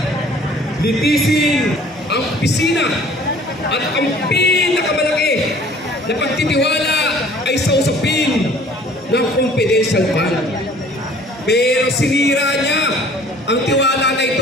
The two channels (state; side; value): normal; both; correlation 0.52